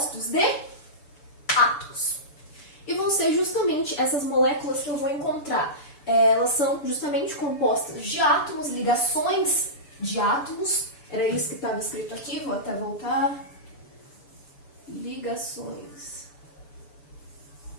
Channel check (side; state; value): right; late; 7.0 ms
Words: de átomos. E vão ser justamente essas moléculas que eu vou encontrar. Elas são justamente compostas de átomos, ligações de átomos. Era isso que estava escrito aqui, vou até voltar. Ligações